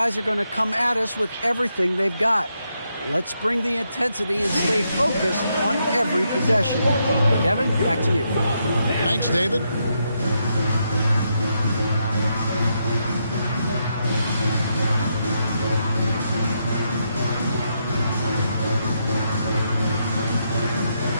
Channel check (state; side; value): inverted; both; correlation -0.80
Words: are going to come at us with everything they've got. Let's bring the intensity and stay focused on every possession. Kevin, back to you. Thanks, David.